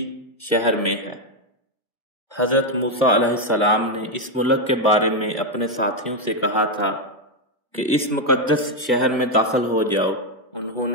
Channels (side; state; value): both; normal; correlation 0.04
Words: شہر میں ہے۔ حضرت موسیٰ علیہ السلام نے اس ملک کے بارے میں اپنے ساتھیوں سے کہا تھا کہ اس مقدس شہر میں داخل ہو جاؤ۔ انہوں